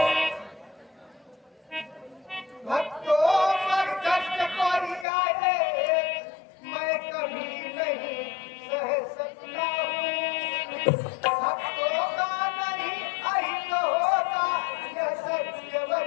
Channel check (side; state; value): right; drops out; at 5.1 s